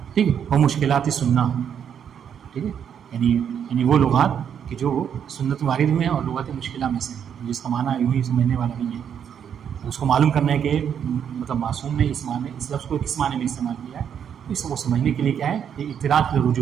ٹھیک ہے. وہ مشکلات سننا. ٹھیک ہے. یعنی وہ لغات کہ جو سنت وارد میں ہیں اور لغات مشکلہ میں سے ہیں، جس کا معنی یوں ہی سمجھنے والا نہیں ہے، اس کو معلوم کرنا ہے کہ مطلب معصوم نے اس لفظ کو کس معنی میں استعمال کیا ہے. تو اس کو سمجھنے کے لیے کیا ہے، یہ اطلاع کی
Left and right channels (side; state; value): left; quieter; 8.3 dB